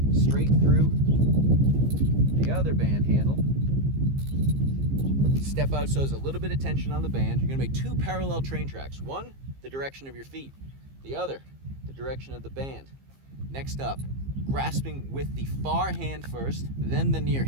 straight through the other band handle. Step out so there's a little bit of tension on the band. You're going to make two parallel train tracks. One, the direction of your feet. The other, the direction of the band. Next up, grasping with the far hand first, then the near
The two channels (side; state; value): left; late; 15 ms